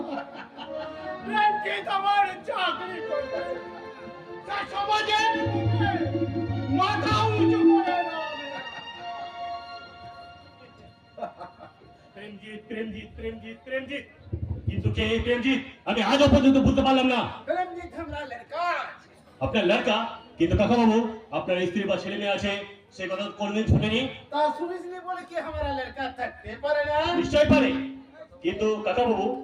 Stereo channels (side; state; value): both; identical; correlation 1.00